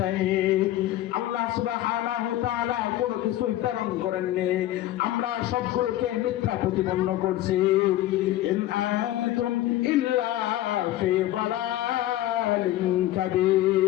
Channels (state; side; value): quieter; right; 14.4 dB